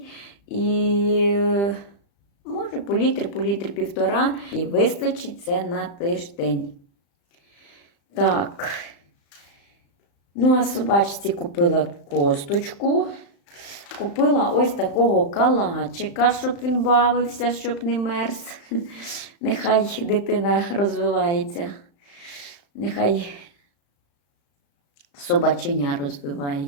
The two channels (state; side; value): late; right; 35 ms